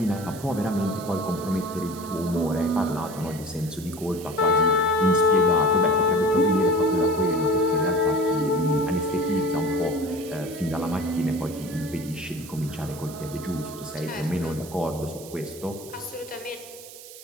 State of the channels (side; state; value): right; noise; hiss, 16 dB below the sound